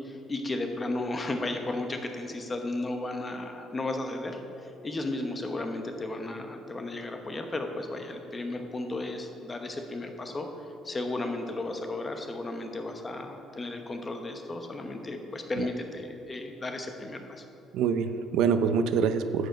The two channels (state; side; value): normal; both; correlation 0.65